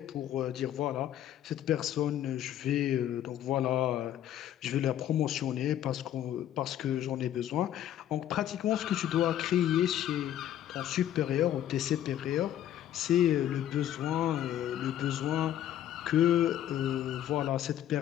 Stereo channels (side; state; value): right; quieter; 11.4 dB